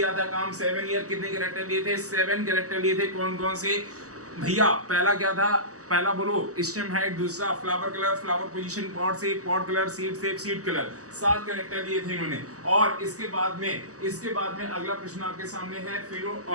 था काम? 7 ईयर। कितने कैरेक्टर लिए थे? 7 कैरेक्टर लिए थे। कौन कौन से भैया? पहला क्या था? पहला बोलो स्टेम हाइट, दूसरा flower colour, flower position, pot shape, pot colour, seed shape, seed colour. 7 character दिए थे इन्होंने। और इसके बाद में अगला प्रश्न आपके सामने है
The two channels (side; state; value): left; late; 0.66 ms